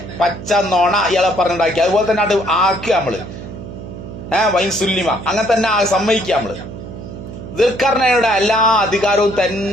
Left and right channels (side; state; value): right; noise; hum, 12 dB below the sound